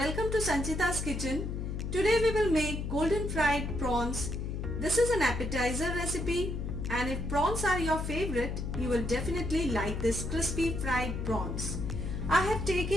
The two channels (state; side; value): noise; left; hum, 3 dB below the sound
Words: to Sanchita's kitchen. Today we will make golden fried prawns. This is an appetizer recipe, and if prawns are your favorite, you will definitely like this crispy fried prawns. I have